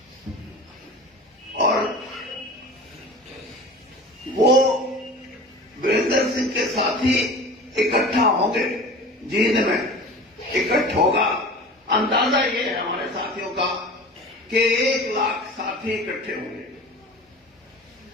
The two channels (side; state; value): both; normal; correlation 0.38